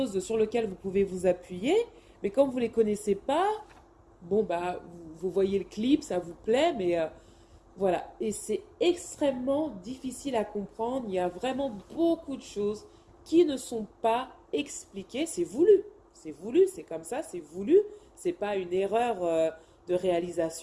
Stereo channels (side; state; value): both; identical; correlation 1.00